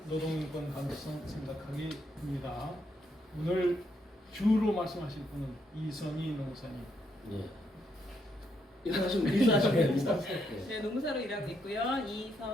노동인권 감수성 생각하기입니다. 오늘 주로 말씀하실 분은 이선희 농사님. 예. 인사하시면 네, 농사로 일하고 있고요.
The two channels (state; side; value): normal; both; correlation 0.76